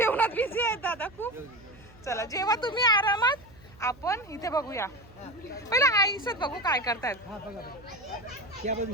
बिझी आहेत दादा खूप. चला जेव्हा तुम्ही आरामात, आपण इथे बघूया. पहिला आईसच बघू काय करतायत.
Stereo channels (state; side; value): noise; right; hum, 24 dB below the sound